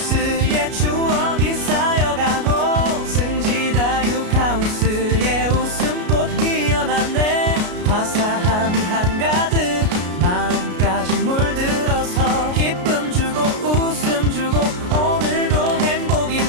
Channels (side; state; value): left; late; 33 ms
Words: 추억이 쌓여가고 승지다육하우스의 웃음꽃 피어났네. 화사함이 한가득 마음까지 물들어서 기쁨 주고 웃음 주고 오늘도 행복이